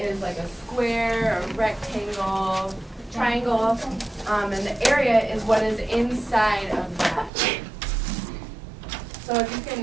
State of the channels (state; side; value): drops out; left; at 7.3 s